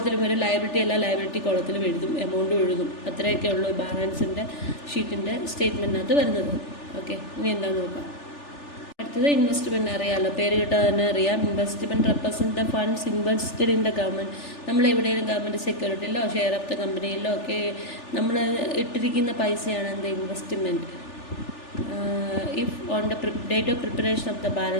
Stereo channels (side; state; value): right; late; 3.4 ms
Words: വരും, ലയബിലിറ്റി എല്ലാ ലയബിലിറ്റി കോളത്തിലും എഴുതും, എമൗണ്ടും എഴുതും. അത്രയൊക്കെ ഉള്ളൂ ബാലൻസിൻ്റെ ഷീറ്റിൻ്റെ സ്റ്റേറ്റ്മെൻറ്റിനകത്ത് വരുന്നത്. ഓക്കെ, ഇനി എന്താണെന്ന് നോക്കാം. അടുത്തത് ഇൻവെസ്റ്റ്മെൻറ്റ്. അറിയാമല്ലോ, പേര് കിട്ടാതെ തന്നെ അറിയാം. Investment represent the funds invested in the government. നമ്മൾ എവിടെയെങ്കിലും ഗവൺമെൻറ് സെക്യൂരിറ്റിയിലോ ഷെയർ ഓഫ് ദ കമ്പനിയിലോ ഒക്കെ നമ്മൾ ഇട്ടിരിക്കുന്ന പൈസയാണ് എന്ത്? Investment. If on the date of preparation of the